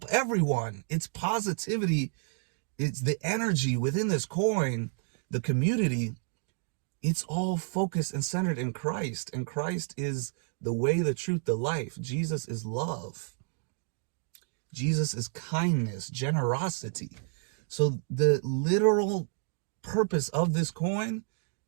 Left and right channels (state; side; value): silent; left; 58 dB below the other